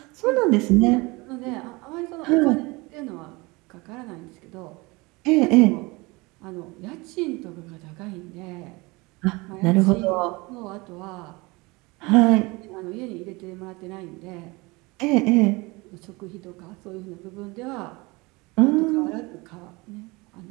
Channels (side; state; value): left; quieter; 24.6 dB